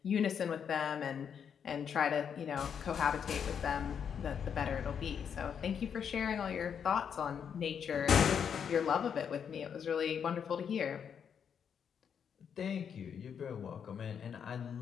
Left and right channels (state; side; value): quieter; right; 7.5 dB